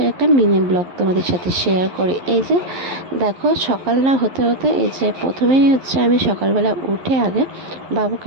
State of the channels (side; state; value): left; late; 11 ms